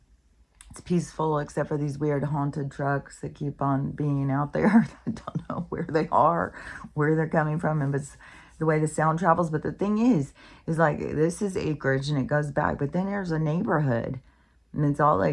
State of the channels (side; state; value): both; identical; correlation 1.00